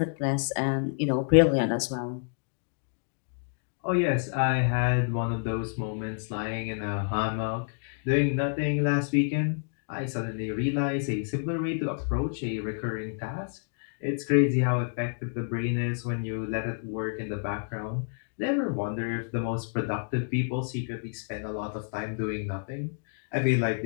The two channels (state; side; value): silent; right; digital silence